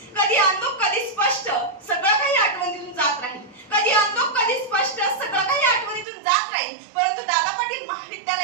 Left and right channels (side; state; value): left; drops out; at 6.1 s